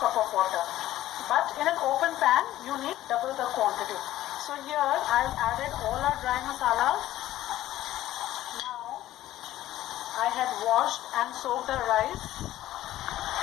cup of water. But in an open pan, you need double the quantity. So here I've added all our dry masalas. Now I had washed and soaked the rice.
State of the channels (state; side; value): quieter; right; 14.2 dB